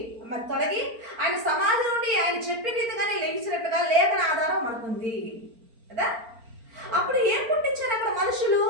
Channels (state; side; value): late; left; 4.4 ms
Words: మరి తొలగి ఆయన సమాధి నుండి ఆయన చెప్పిన రీతిగానే లేచినట్టుగా లేఖన ఆధారం మనకుంది కదా. అప్పుడు ఏం పుట్టించారు అక్కడ మనుషులు